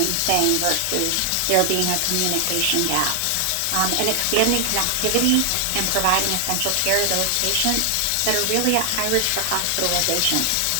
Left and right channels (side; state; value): both; different; correlation 0.00